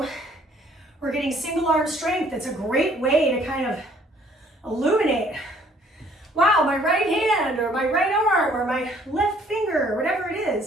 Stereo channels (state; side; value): normal; both; correlation 0.60